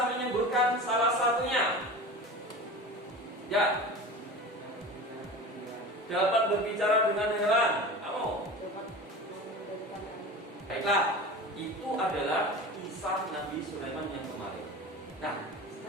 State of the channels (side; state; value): both; normal; correlation 0.33